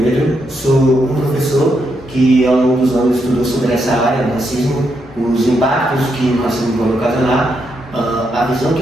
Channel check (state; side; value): normal; both; correlation 0.80